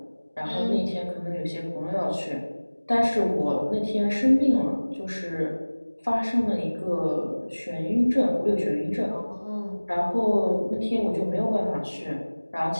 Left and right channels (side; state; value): both; inverted; correlation -1.00